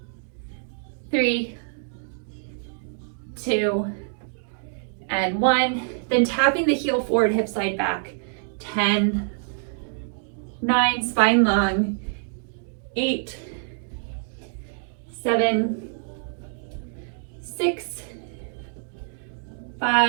3, 2, and 1. Then tapping the heel forward, hip slide back. 10, 9, spine long. 8, 7, 6,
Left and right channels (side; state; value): left; silent; digital silence